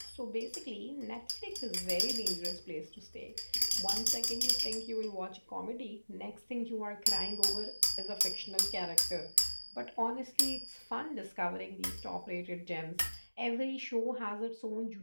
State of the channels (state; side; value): inverted; both; correlation -1.00